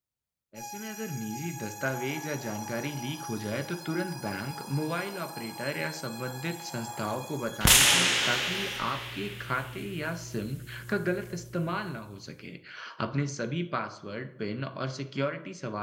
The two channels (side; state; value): both; identical; correlation 1.00